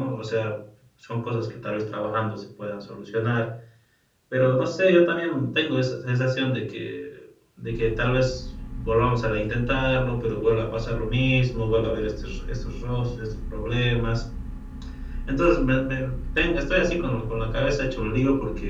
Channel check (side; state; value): both; identical; correlation 1.00